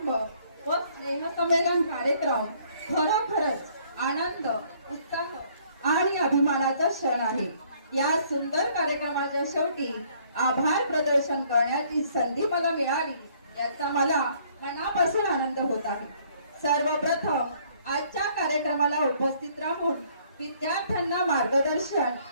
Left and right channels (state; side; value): inverted; both; correlation -0.62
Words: व स्नेह संमेलन कार्यक्रम खरोखरच आनंद, उत्साह आणि अभिमानाचा क्षण आहे. या सुंदर कार्यक्रमाच्या शेवटी आभार प्रदर्शन करण्याची संधी मला मिळाली याचा मला मनापासून आनंद होत आहे. सर्वप्रथम आजच्या कार्यक्रमाला उपस्थित राहून विद्यार्थ्यांना मार्गदर्शन